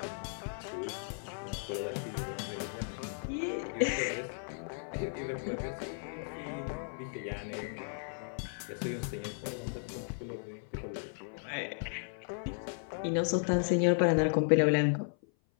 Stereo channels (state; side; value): silent; right; 54 dB below the other